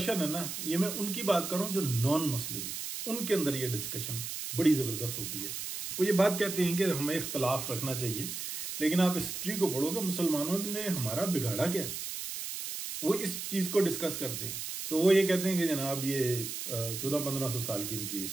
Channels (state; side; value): noise; right; hiss, 5 dB below the sound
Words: है ना, ये मैं उनकी बात कर रहा हूं जो नॉन मुस्लिम्स, उनके अंदर ये डिस्कशन बड़ी जबरदस्त होती है। वो ये बात कहते हैं कि हमें इख्तलाफ रखना चाहिए, लेकिन आप हिस्ट्री को पढ़ोगे मुसलमानों ने हमारा बिगाड़ा क्या, वो इस चीज को डिस्कस करते हैं। तो वो ये कहते हैं कि जनाब ये 1400-1500 साल की इनकी